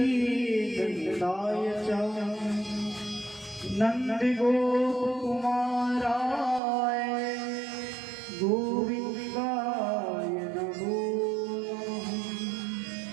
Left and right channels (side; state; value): left; drops out; at 6.6 s